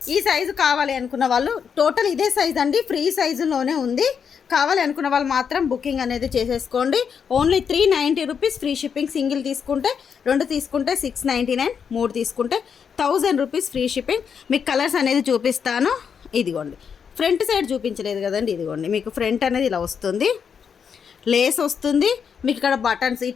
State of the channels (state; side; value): quieter; right; 6.9 dB